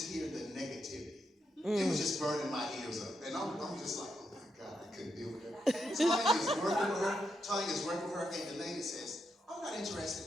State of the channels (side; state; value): both; normal; correlation 0.82